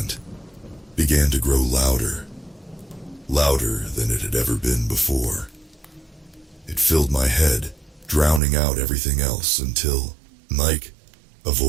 began to grow louder, louder than it had ever been before. It filled my head, drowning out everything else until, "Mike," a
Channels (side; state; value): left; drops out; at 8.4 s